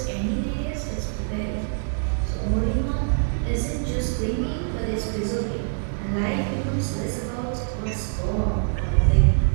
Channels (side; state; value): left; silent; digital silence